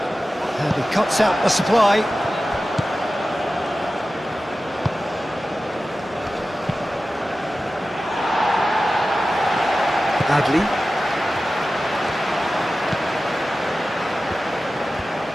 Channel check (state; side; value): normal; both; correlation 0.95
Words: And he cuts out the supply. Adli.